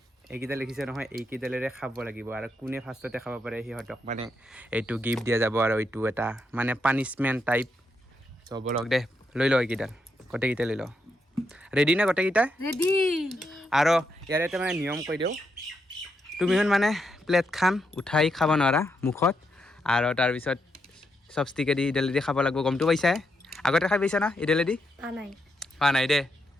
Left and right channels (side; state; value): both; normal; correlation 0.81